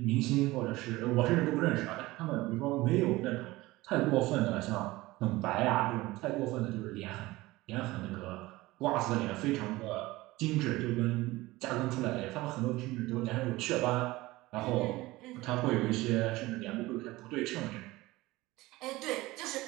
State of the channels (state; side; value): quieter; left; 19.4 dB